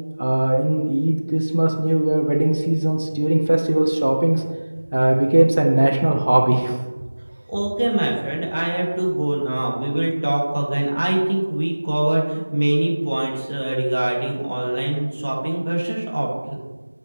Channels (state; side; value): inverted; both; correlation -1.00